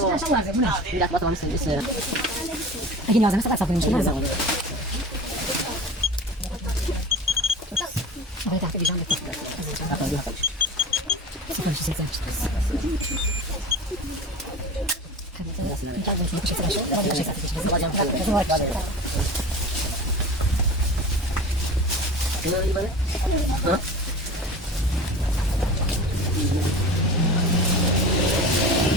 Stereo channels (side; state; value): both; normal; correlation 0.35